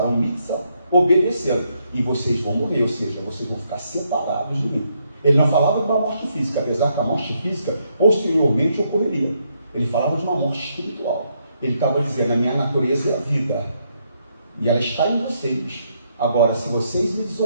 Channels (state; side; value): inverted; both; correlation -0.76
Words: mitzvah obedecendo, e vocês vão morrer, ou seja, vocês vão ficar separados de mim. Ele não falava de uma morte física, apesar que a morte física posteriormente ocorreria. Ele falava de uma morte espiritual. Ele estava dizendo, a minha natureza é a vida, e ela está em vocês. Agora, se vocês me